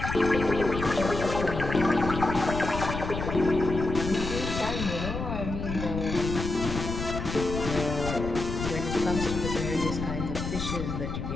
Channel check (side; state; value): left; noise; rumble, 5 dB below the sound